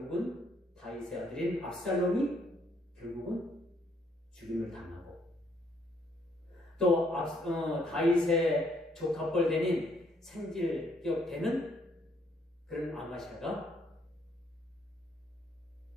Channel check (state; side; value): normal; both; correlation 0.69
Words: 다윗의 아들인 압살롬이 결국은 죽임을 당하고, 또 다윗의 조카뻘 되는 생질격 되는 그런 아마샤가